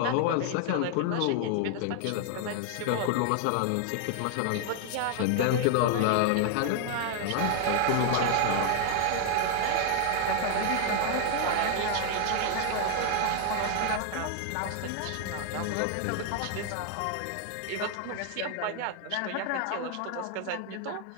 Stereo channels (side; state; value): both; different; correlation 0.00